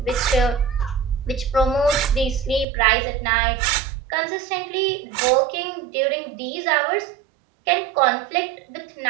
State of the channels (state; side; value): drops out; left; at 2.7 s